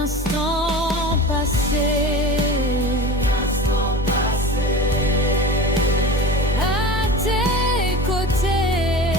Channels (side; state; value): both; normal; correlation 0.32